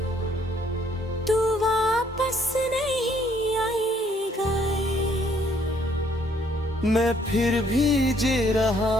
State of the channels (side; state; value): both; normal; correlation 0.66